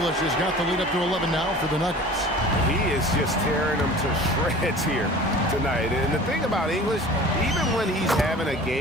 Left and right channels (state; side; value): normal; both; correlation 0.42